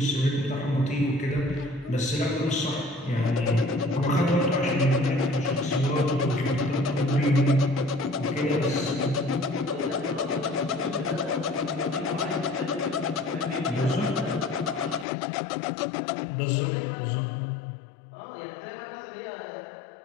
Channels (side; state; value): right; drops out; at 15.1 s